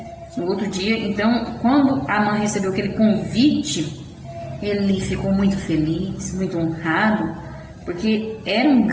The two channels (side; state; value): both; identical; correlation 1.00